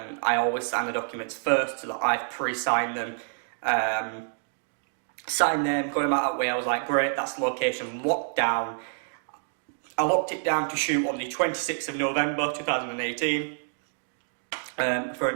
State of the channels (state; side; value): silent; left; digital silence